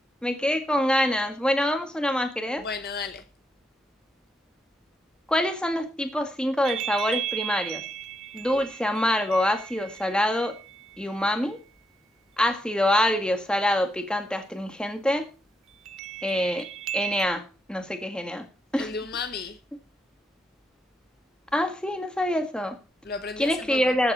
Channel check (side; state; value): both; normal; correlation 0.80